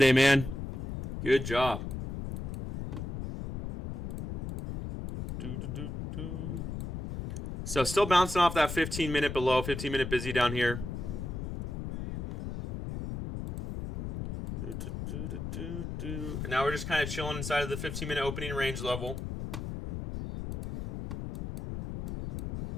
man. Good job. So still bouncing off that 15-minute below, 15-minute busy down here. And now we're just kind of chilling inside of the 15-minute opening range level.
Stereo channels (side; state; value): left; noise; rumble, 5 dB below the sound